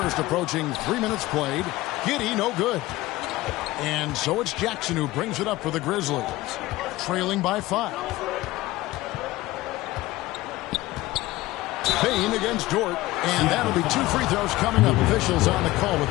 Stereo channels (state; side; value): quieter; right; 18.1 dB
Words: approaching 3 minutes played. Giddey, no good. And so it's Jackson who brings it up for the Grizzlies, trailing by 5. Bain against Dort, and that'll be 2 free throws coming up. Officials on the call with